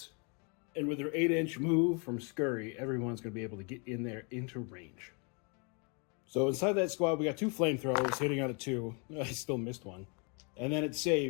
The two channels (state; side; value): quieter; right; 34.6 dB